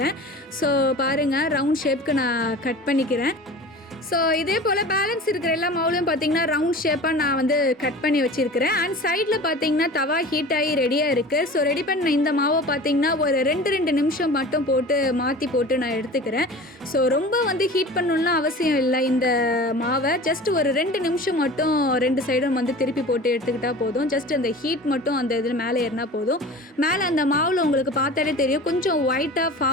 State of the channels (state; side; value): normal; both; correlation 0.38